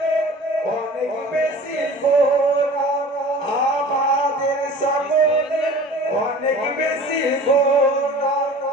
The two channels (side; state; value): both; normal; correlation 0.42